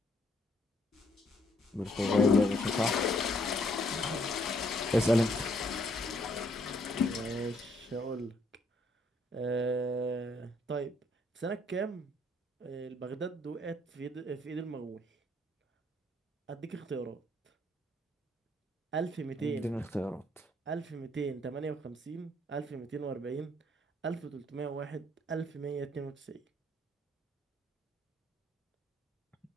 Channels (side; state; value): both; normal; correlation 0.68